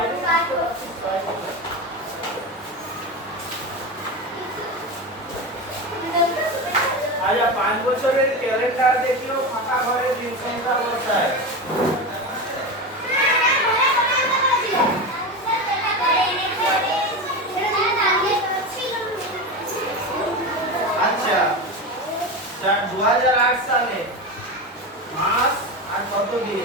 আচ্ছা 5 বছরের ক্যালেন্ডার দেখিও ফাঁকা ঘরে দিন সংখ্যা বসায় আচ্ছা 2008 সালে মাস আর কত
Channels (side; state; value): both; normal; correlation 0.21